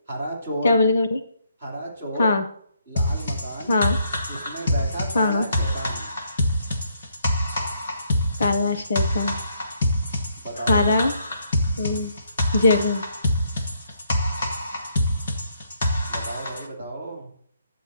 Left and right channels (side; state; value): both; inverted; correlation -0.74